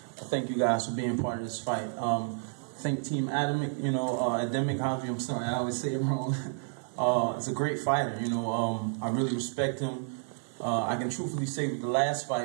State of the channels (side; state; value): left; silent; 56 dB below the other